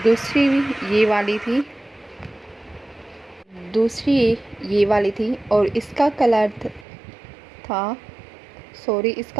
दूसरी ये वाली थी, दूसरी ये वाली थी। और इसका कलर था, सॉरी,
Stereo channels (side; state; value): left; drops out; at 6.9 s